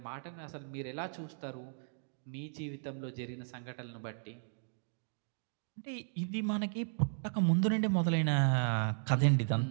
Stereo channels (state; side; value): silent; left; digital silence